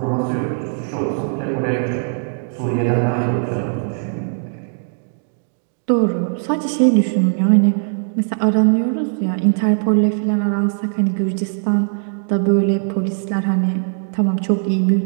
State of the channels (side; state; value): left; silent; 66 dB below the other